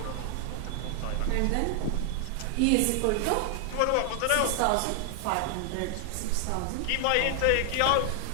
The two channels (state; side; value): different; both; correlation 0.00